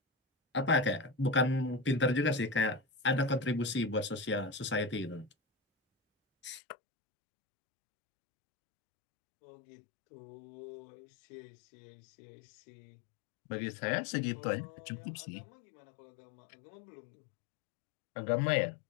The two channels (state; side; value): drops out; right; at 6.6 s